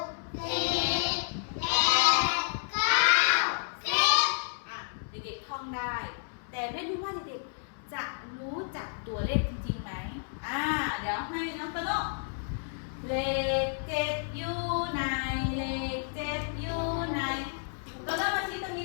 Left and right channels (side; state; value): right; silent; 57 dB below the other